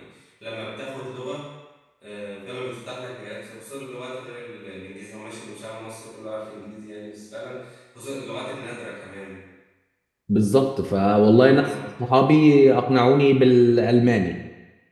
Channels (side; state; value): both; identical; correlation 1.00